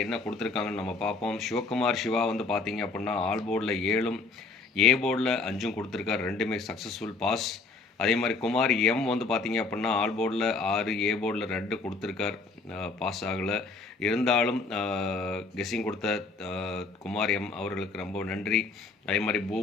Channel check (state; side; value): quieter; right; 4.0 dB